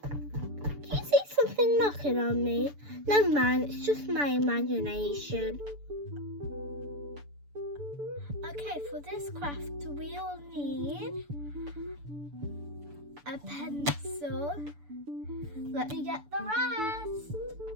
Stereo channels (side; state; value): left; late; 6.9 ms